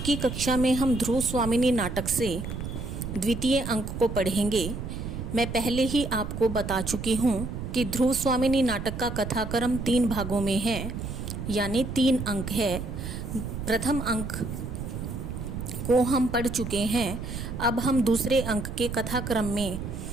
कक्षा में हम ध्रुव स्वामिनी नाटक से द्वितीय अंक को पढ़ेंगे। मैं पहले ही आपको बता चुकी हूँ कि ध्रुव स्वामिनी नाटक का कथाक्रम 3 भागों में है, यानी 3 अंक है। प्रथम अंक को हम पढ़ चुके हैं। अब हम दूसरे अंक के कथाक्रम में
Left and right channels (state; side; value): noise; right; rumble, 6 dB below the sound